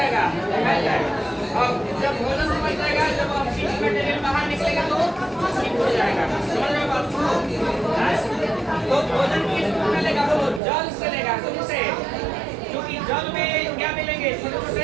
फैल जाएगा। और जब भोजन समझ जाएगा जब ऑक्सीजन मटेरियल बाहर निकलेगा तो ठीक हो जाएगा। समझ रहे हो बात को? तो भोजन किस रूप में लेगा? वो जल से लेगा। तुमसे क्योंकि जल में क्या मिलेंगे? छोटे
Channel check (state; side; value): drops out; left; at 10.6 s